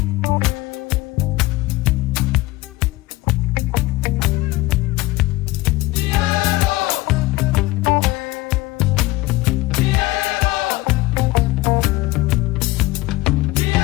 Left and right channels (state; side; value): quieter; right; 19.5 dB